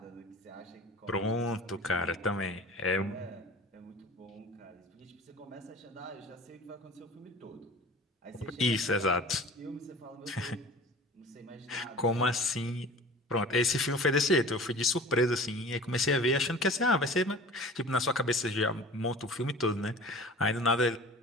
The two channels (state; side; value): normal; both; correlation 0.41